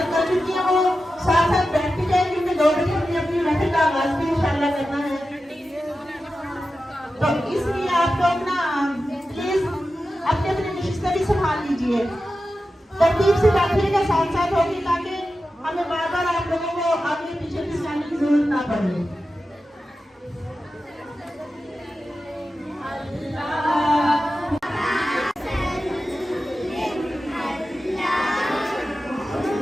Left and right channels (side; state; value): both; normal; correlation 0.92